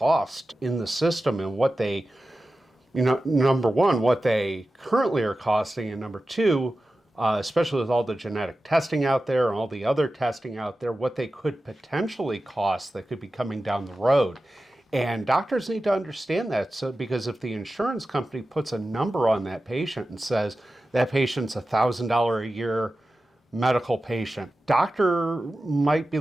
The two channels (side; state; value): both; normal; correlation 0.94